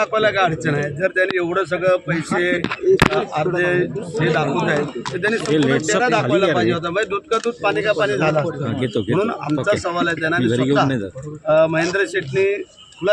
काय अडचण आहे? जर त्याने एवढं सगळं पैसे अर्धे हे दाखवत आहेत तर त्याने चेहरा दाखवायला पाहिजे होता। म्हणजे दूध का दूध पाणी का पाणी झाला असतं। म्हणून आमचा सवाल आहे, त्यांना महेंद्र शेठने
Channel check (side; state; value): both; identical; correlation 1.00